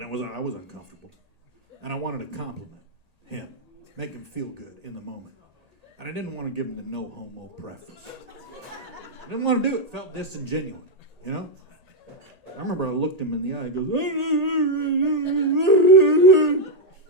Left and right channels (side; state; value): left; late; 1.8 ms